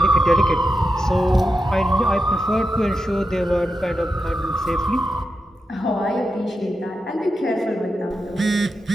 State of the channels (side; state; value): both; normal; correlation 0.88